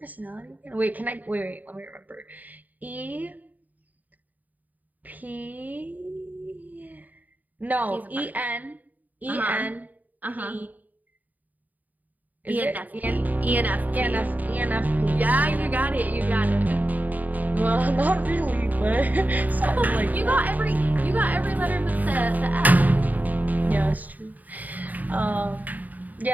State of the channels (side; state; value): left; late; 0.081 ms